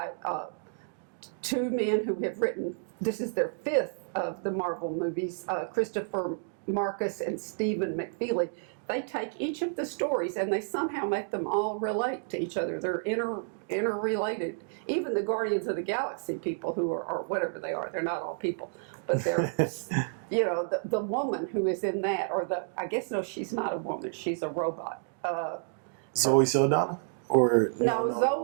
2 men who have written. This is their 5th of the Marvel movies. Christopher Marcus and Stephen McFeely. They take each of the stories and they somehow make them all relate to each other. They're interrelated. Even the Guardians of the Galaxy people who are whatever they are, they're not all people, but they're, the woman who is in that, I guess, no, she's not a woman, she's a robot. Zoe Saldana? Or no,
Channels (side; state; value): left; silent; digital silence